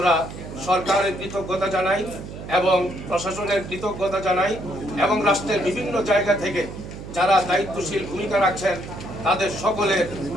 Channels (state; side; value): noise; right; hum, 11 dB below the sound